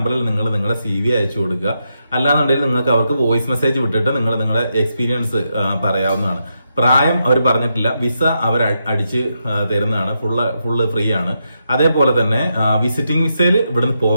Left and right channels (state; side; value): inverted; both; correlation -0.83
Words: നിങ്ങൾ നിങ്ങളുടെ CV അയച്ചു കൊടുക്കുക. അല്ലാന്നുണ്ടെങ്കിൽ നിങ്ങൾക്ക് അവർക്ക് വോയിസ് മെസ്സേജ് വിട്ടിട്ട് നിങ്ങൾ നിങ്ങളുടെ എക്സ്പീരിയൻസ് പറയാവുന്നതാണ്. പ്രായം അവർ പറഞ്ഞിട്ടില്ല. വിസ അവർ അടിച്ച് തരുന്നതാണ്. ഫുള്ള് ഫ്രീ ആണ്. അതേപോലെ തന്നെ വിസിറ്റിംഗ് വിസയിൽ ഇവിടുന്ന്